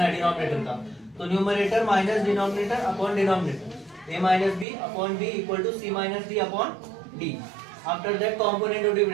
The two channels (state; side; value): drops out; left; at 4.7 s